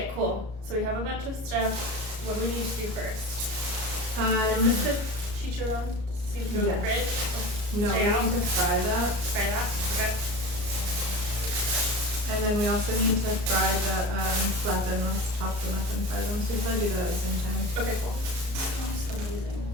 cool. So we have a bunch of stuff. What do we need to do first? Is this the chicharron? See if through the fridge? No, we need to fry that. Fry that? Okay. And then we also need to fry the plátanos, chop them up and fry them. So we probably do that at the same time. Okay, cool. Sounds amazing.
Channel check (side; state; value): left; late; 33 ms